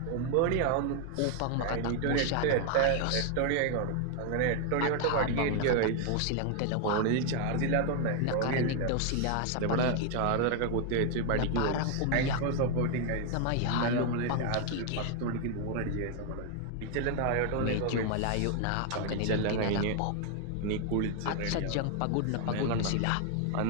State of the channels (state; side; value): different; both; correlation 0.00